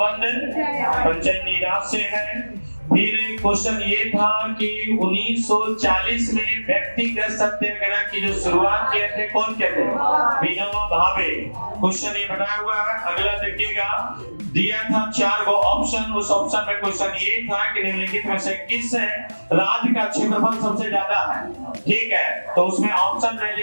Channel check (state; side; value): inverted; both; correlation -1.00